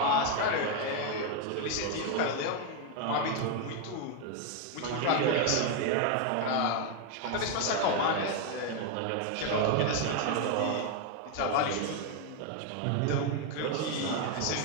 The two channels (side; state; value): both; different; correlation 0.01